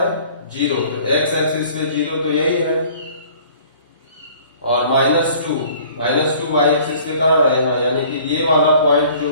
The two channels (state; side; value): inverted; both; correlation -0.52